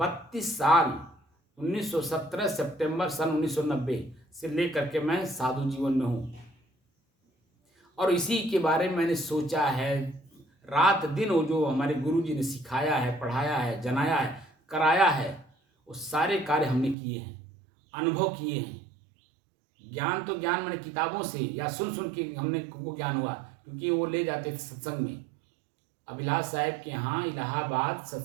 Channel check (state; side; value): drops out; left; at 16.9 s